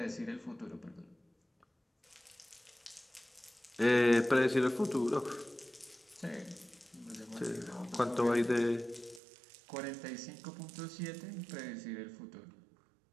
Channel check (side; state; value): left; drops out; at 9.2 s